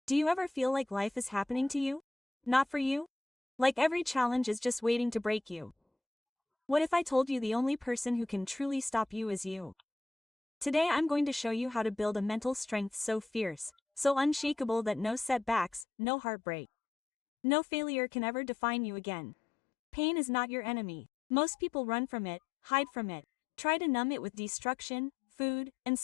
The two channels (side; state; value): right; drops out; at 15.9 s